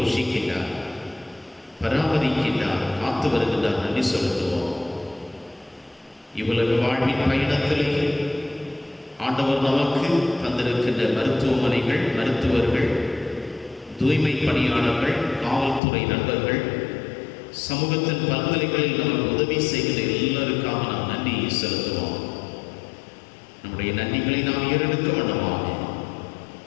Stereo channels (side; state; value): right; drops out; at 15.8 s